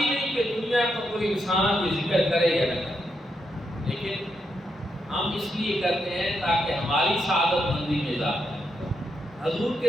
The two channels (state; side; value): normal; both; correlation 0.81